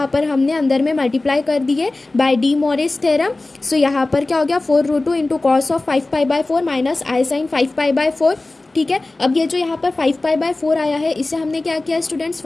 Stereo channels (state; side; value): quieter; right; 3.0 dB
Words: पर हमने अंदर में मल्टीप्लाई कर दिए by D Morris theorem. So यहाँ पर क्या हो गया, 4 √2 into cos of 5π/4 minus i sine 5π/4। ठीक है, अब ये जो यहाँ पर 5π/4 आया है, इसे हमने क्या किया स्टूडेंट्स,